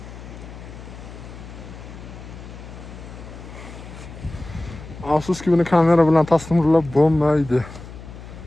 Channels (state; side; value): noise; left; hum, 14 dB below the sound